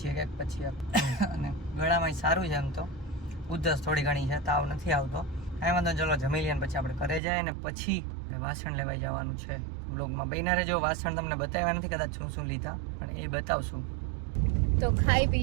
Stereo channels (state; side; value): drops out; left; at 7.2 s